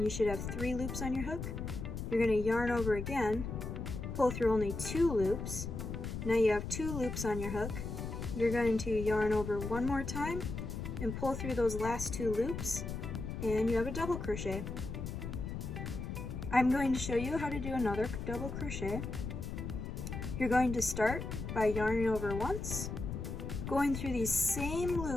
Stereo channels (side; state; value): left; noise; rumble, 5 dB below the sound